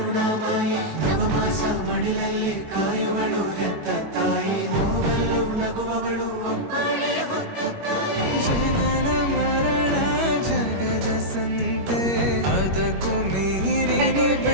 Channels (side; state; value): left; late; 21 ms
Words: ನವಮಾಸ ಮಡಿಲಲ್ಲಿ ಕಾಯುವಳು ಹೆತ್ತ ತಾಯಿ ನೋವಲು ನಗುವವಳು ಒಬ್ಬಳೇ ಹೊತ್ತ ತಾಯಿ ಜನನ ಮರಣ ಜಗದ ಸಂತೆ ಅದಕ್ಕೂ ಮೀರಿ